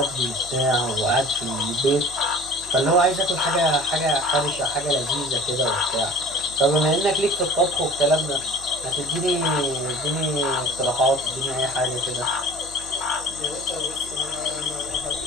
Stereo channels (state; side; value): noise; left; hum, 21 dB below the sound